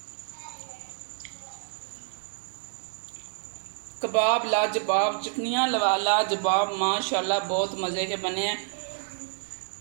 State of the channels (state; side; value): silent; left; digital silence